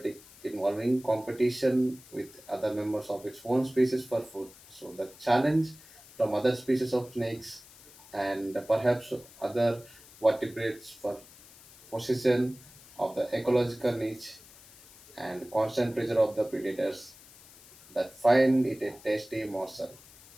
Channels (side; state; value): left; noise; hiss, 22 dB below the sound